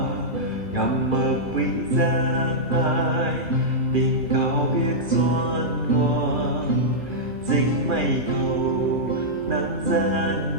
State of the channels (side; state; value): left; late; 2.7 ms